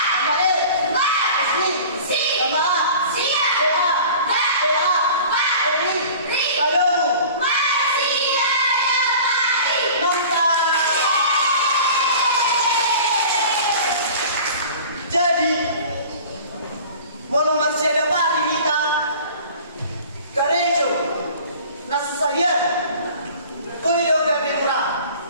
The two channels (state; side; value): inverted; both; correlation -0.43